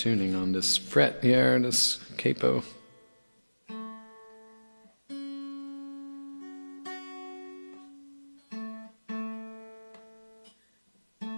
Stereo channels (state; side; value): inverted; both; correlation -1.00